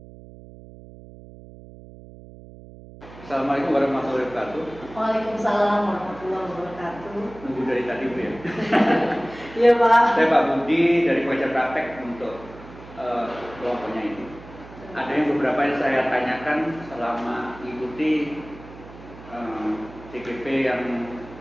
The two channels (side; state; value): right; noise; hum, 18 dB below the sound